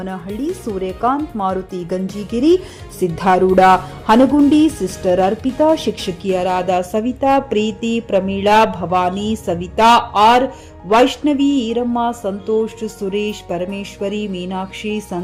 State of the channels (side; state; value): both; identical; correlation 1.00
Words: Suryakant, Maruti Ganjigiri, Siddharudha Hanagundi, sister Arpita, ಶಿಕ್ಷಕಿಯರಾದ ಸವಿತಾ, ಪ್ರೀತಿ, ಪ್ರಮೀಳಾ, ಭವಾನಿ, ಸವಿತಾ, ಆರ್, ವೈಷ್ಣವಿ, ಈರಮ್ಮ, ಸಂತೋಷ್, ಸುರೇಶ್, ಪರಮೇಶ್ವರಿ, ಮೀನಾಕ್ಷಿ,